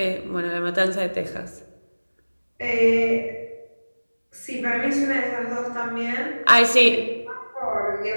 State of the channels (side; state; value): both; inverted; correlation -1.00